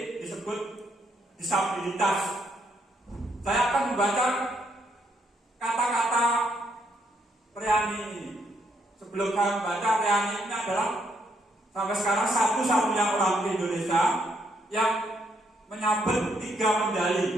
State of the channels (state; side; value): normal; both; correlation 0.74